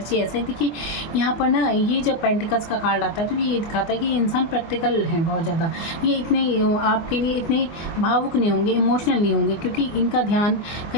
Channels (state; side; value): late; right; 24 ms